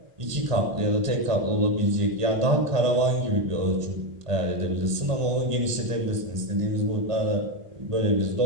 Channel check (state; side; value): late; left; 1.5 ms